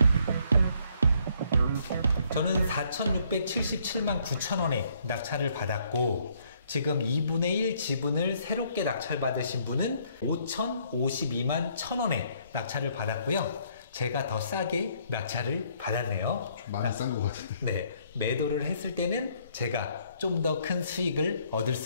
저는 4,677만 9천원에 낙찰을 받았고, 지금 2분의 1 지분을 새롭게 낙찰받으신 분은 5,052만 1,000원에 낙찰을 받았고요. 제가 더 싸게 낙찰을 받았네요. 많이 싼 것 같은데. 네, 매도를 했을 때는 제가 좀 더 큰 수익을 얻을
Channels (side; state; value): both; inverted; correlation -0.66